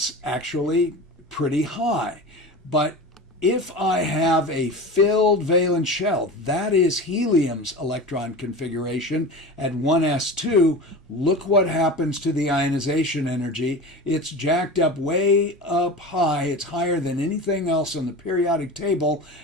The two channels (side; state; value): both; normal; correlation 0.31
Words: actually pretty high. But if I have a filled valence shell, that is helium's electron configuration at 1s2, look what happens to the ionization energy. It's jacked up way up high. It's higher than anything else on the periodic table